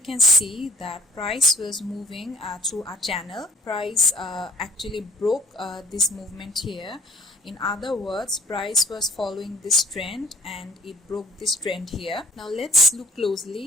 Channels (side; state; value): both; normal; correlation 0.55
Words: see that price was moving through a channel. Price actually broke this movement here. In other words, price was following this trend and it broke this trend here. Now let's look